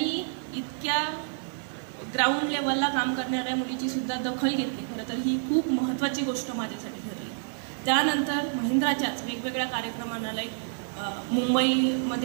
इतक्या ग्राउंड लेवलला काम करणाऱ्या मुलीची सुद्धा दखल घेतली. खरं तर ही खूप महत्त्वाची गोष्ट माझ्यासाठी ठरली. त्यानंतर महिंद्राच्याच वेगवेगळ्या कार्यक्रमांना लाईक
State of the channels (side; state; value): left; silent; 59 dB below the other